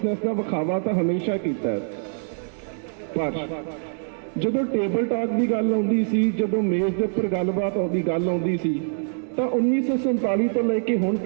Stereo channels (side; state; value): left; silent; digital silence